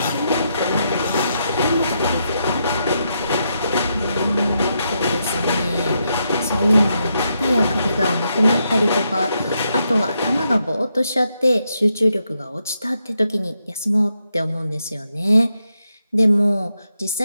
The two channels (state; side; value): inverted; both; correlation -0.81